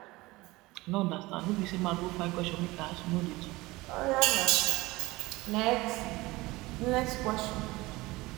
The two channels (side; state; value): left; quieter; 20.8 dB